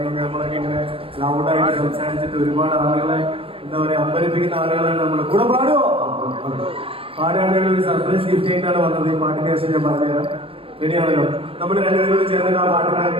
കഴിഞ്ഞാൽ നമ്മളൊക്കെ ഇങ്ങനെ ലൗഡായിട്ട് സംസാരിച്ചിട്ട് ഒരുപാട് ആളുകളെ എന്താ പറയുക അമ്പരിപ്പിക്കുന്ന ആളുകളാണ് നമ്മൾ. കൂടെ പാടുമോ? പാടുകയാണെങ്കിൽ ഒരു സർപ്രൈസ് ഗിഫ്റ്റ് ആയിട്ടാണ് വന്നത്. ഈ പാട്ടിൻ്റെ ശേഷം ഞാൻ പറഞ്ഞുതരാം. റെഡിയാണല്ലോ? നമ്മൾ 2 പേരോട് ചേർന്നിട്ട് ആ പാട്ടിന്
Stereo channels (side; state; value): left; late; 0.27 ms